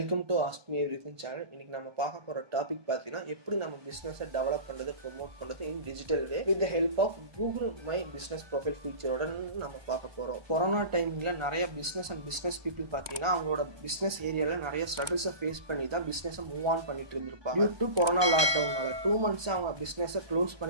to AskMeEverything channel. இன்னைக்கு நம்ம பார்க்க போகிற டாபிக் பார்த்தீங்கன்னா எப்படி நம்ம பிஸ்னஸை டெவலப் பண்ணுறது ப்ரொமோட் பண்ணுறது in digital way with the help of Google my business profile ஃபீச்சரோட நம்ம பார்க்க போகிறோம். கொரோனா டைமிங்கில் நிறைய பிஸ்னஸ் பீப்புள் பார்த்தீங்கன்னா அவங்களோட பிஸ்னஸ் ஏரியாவில் நிறைய ஸ்ட்ரகிள்ஸை ஃபேஸ் பண்ணி தான் பிஸ்னஸை மூவ் ஆன் பண்ணிட்டு இருந்திருப்பாங்க. டியூ டு கொரோனா லாக்டவுனால 2 months அவங்க பிஸ்னஸை க்ளோஸ்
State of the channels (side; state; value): left; late; 1.2 ms